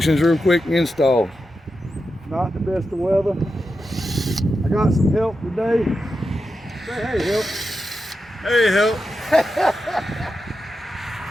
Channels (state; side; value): normal; both; correlation 0.89